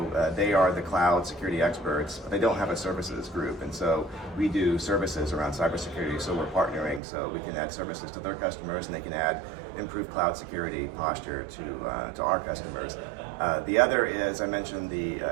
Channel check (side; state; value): left; drops out; at 7.0 s